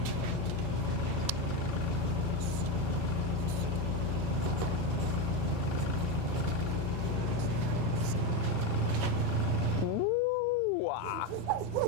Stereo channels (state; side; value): normal; both; correlation 0.12